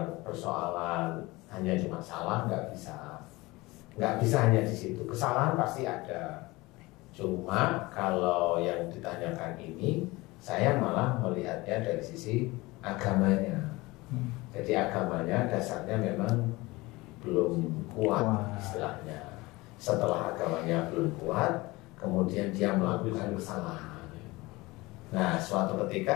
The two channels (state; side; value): quieter; right; 21.8 dB